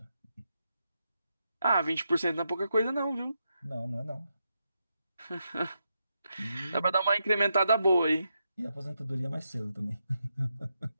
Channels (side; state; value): both; inverted; correlation -0.84